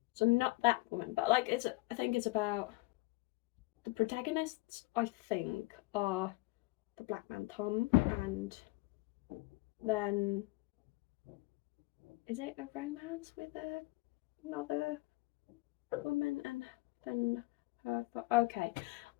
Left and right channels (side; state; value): right; quieter; 22.3 dB